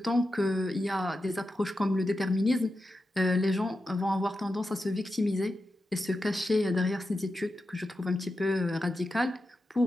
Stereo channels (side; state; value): both; normal; correlation 0.90